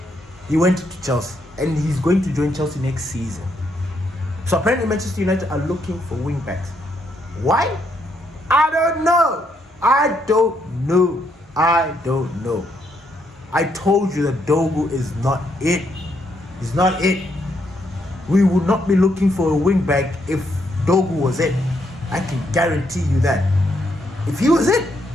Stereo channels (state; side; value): normal; both; correlation 0.75